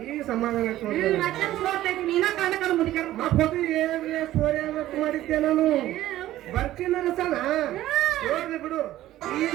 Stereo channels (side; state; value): left; quieter; 14.4 dB